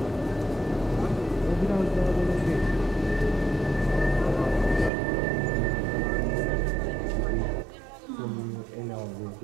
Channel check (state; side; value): drops out; left; at 4.9 s